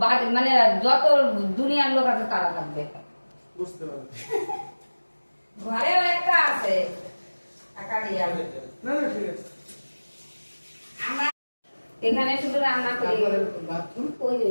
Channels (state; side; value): inverted; both; correlation -1.00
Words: মানে যত দুনিয়ার লোক আছে তারা থাকবে। বুঝতে পারছি। ঘরেও একটা আছে টাকা দিয়ে। না না ঠিক আছে। আমরা এখানে শুধু রান্না করি। বাথরুম ওই যে